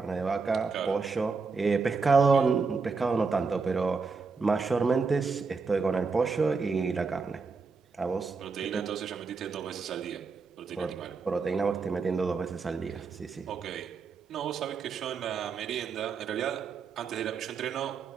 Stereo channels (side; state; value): left; quieter; 4.8 dB